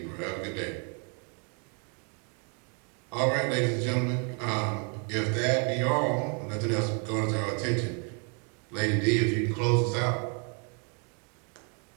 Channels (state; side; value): quieter; left; 37.9 dB